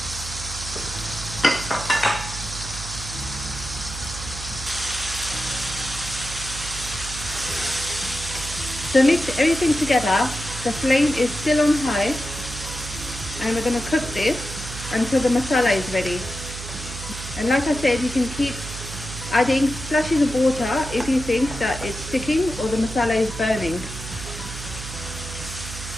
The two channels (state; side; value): noise; right; hum, 10 dB below the sound